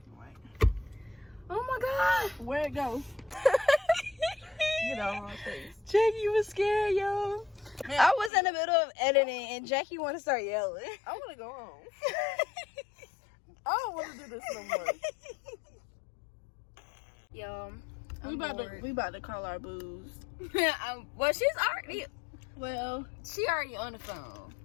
and white. Oh my god. Where it goes? Get out of my face. Jackie was scared, yo. I was in the middle of editing and Jackie wanted to start yelling. I want to go home. I don't want to do this no more. Yo, We about to call our booze. well, she's already. Well, She already on the phone,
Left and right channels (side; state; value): right; drops out; at 8.3 s